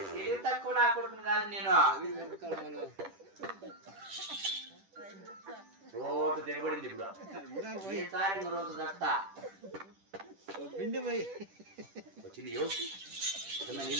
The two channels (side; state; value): left; late; 10 ms